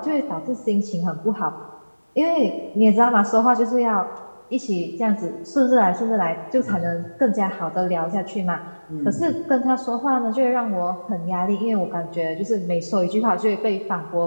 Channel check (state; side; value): inverted; both; correlation -1.00